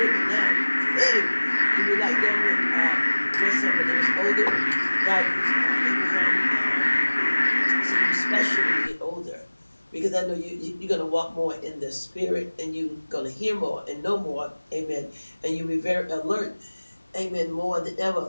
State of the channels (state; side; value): inverted; both; correlation -1.00